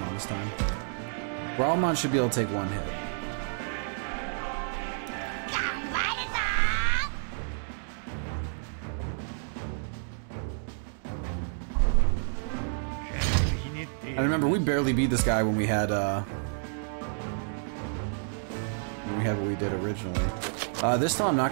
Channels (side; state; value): left; silent; digital silence